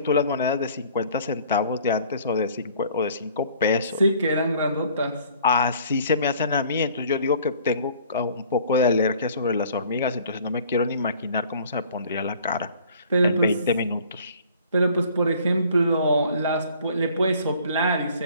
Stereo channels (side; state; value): both; inverted; correlation -0.54